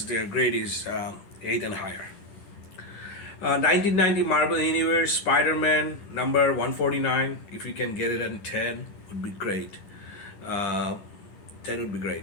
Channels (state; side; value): late; right; 11 ms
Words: their grade is 8 and higher. 1990 Marvel Universe Spider-Man number 149. If you can get it at 10, would be great. 10 would be